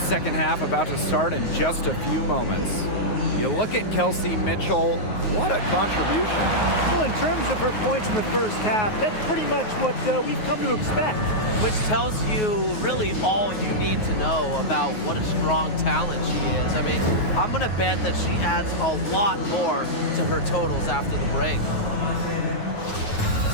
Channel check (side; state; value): right; late; 9.4 ms